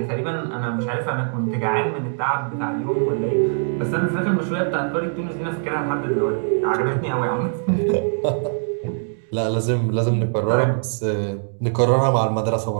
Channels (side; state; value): left; silent; digital silence